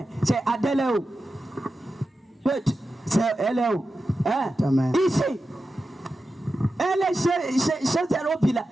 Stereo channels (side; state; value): both; normal; correlation 0.91